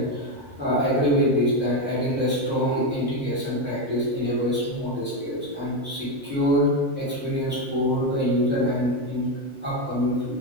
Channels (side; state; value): both; normal; correlation 0.10